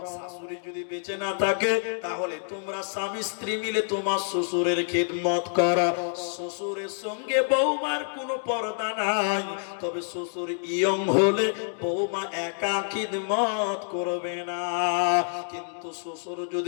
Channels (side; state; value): right; silent; digital silence